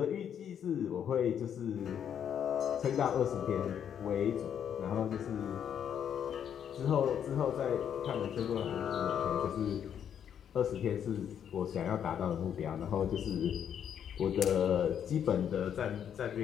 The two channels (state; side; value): quieter; right; 8.8 dB